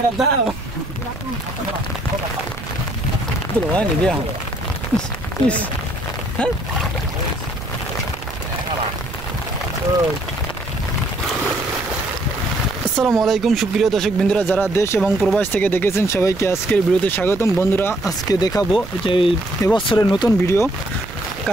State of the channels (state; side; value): noise; right; rumble, 14 dB below the sound